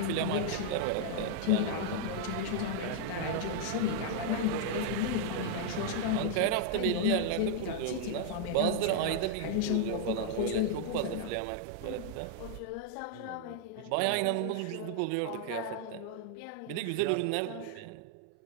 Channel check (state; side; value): different; both; correlation 0.00